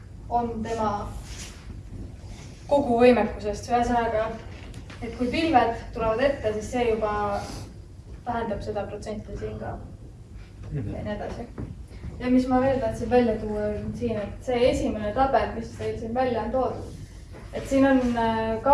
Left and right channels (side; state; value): both; identical; correlation 1.00